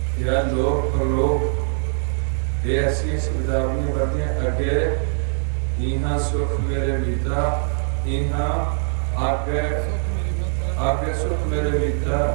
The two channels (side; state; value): left; silent; 58 dB below the other